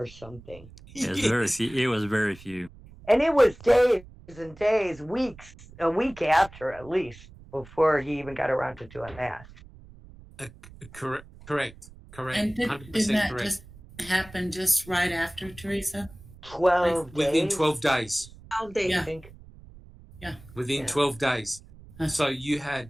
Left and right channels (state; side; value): noise; right; rumble, 20 dB below the sound